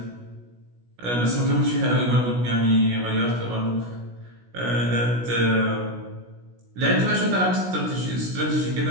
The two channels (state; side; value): late; left; 16 ms